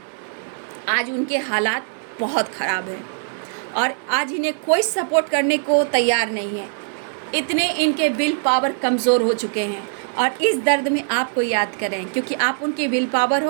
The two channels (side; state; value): left; silent; digital silence